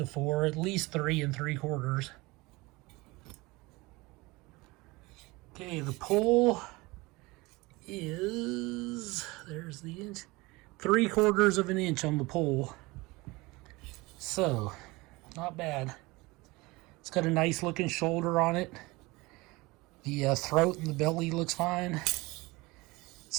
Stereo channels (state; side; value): quieter; left; 22.9 dB